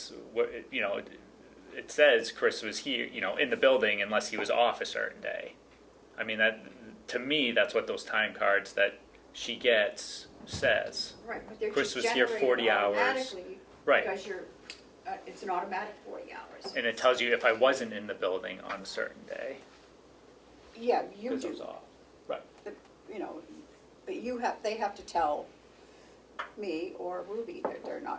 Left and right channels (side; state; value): both; identical; correlation 1.00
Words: you know, it says Chris was here, you know, in the building unless he was off a certain day. I mean, that, to me, that's what those time cards that she gets says. Right, but they're Chris just was here generated 40 hours. automatically Right. because it's an automatic 40 hours. And it tells you if I wasn't in the building on a certain day, Yeah, you because I was do, off. Right. you know, but they have to tell me or Ruby that they're